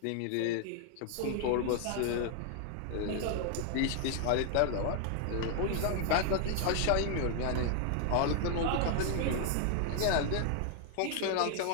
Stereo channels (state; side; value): different; both; correlation 0.00